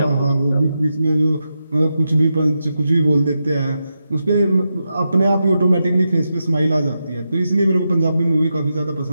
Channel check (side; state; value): both; inverted; correlation -0.87